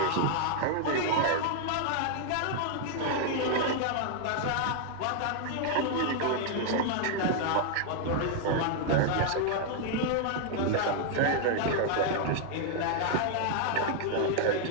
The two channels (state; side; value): different; both; correlation 0.00